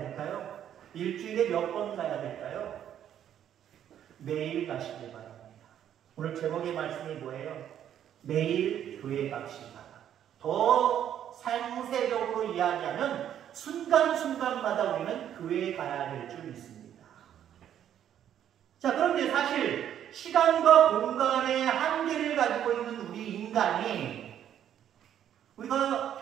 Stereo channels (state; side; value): quieter; left; 10.2 dB